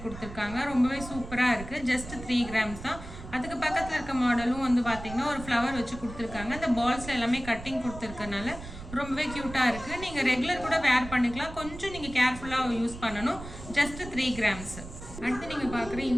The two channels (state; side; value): noise; right; rumble, 12 dB below the sound